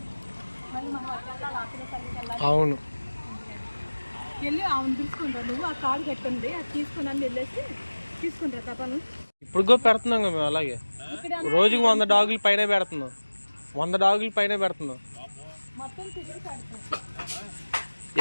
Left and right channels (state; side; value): inverted; both; correlation -1.00